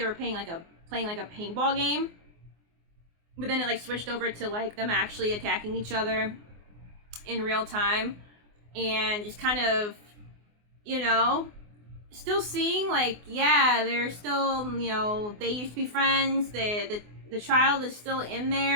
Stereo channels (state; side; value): late; left; 24 ms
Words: were playing like a paintball game. But then it like switched over to like them actually attacking each other in real time, and just kind of, you know, still seeing like, yeah, they're still, you know, they used to be friends. The child is still in